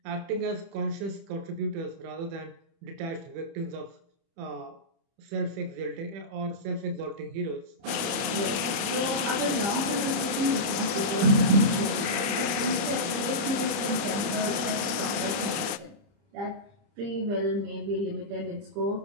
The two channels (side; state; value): left; late; 30 ms